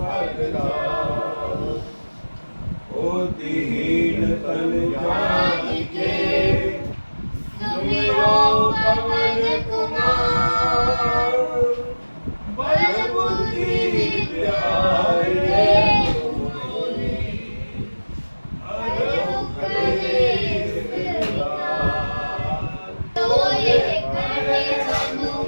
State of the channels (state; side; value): inverted; both; correlation -1.00